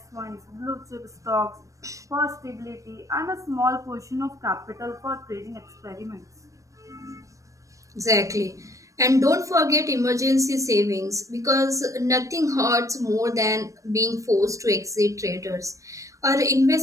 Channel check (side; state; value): left; late; 0.16 ms